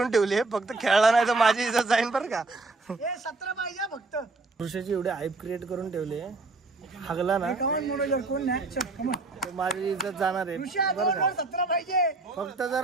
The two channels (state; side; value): quieter; left; 3.4 dB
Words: ठेवली आहे. फक्त खेळला नाही तर माझी इज्जत जाईन बरं का. 17 पाहिजे फक्त. ऋषाची एवढी हाईप क्रिएट करून ठेवली आहे. हागला ना कमान मनोजर कोण नाही. चल कमान. तर माझी इज्जत जाणार आहे ऋषा बरं 2 का. ओव्हर 17 पाहिजे. फक्त